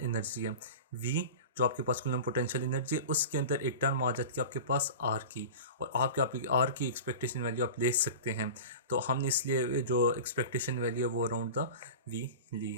energy है। V जो आपके पास कूलम पोटेंशियल एनर्जी है उसके अंदर एक टर्म आ जाती है आपके पास R की, और आपकी R की एक्सपेक्टेशन वैल्यू आप ले सकते हैं। तो हमने इसलिए जो एक्सपेक्टेशन वैल्यू है वो अराउंड द V ली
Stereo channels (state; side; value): inverted; both; correlation -0.32